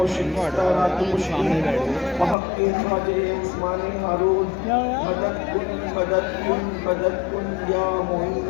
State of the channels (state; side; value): drops out; right; at 2.4 s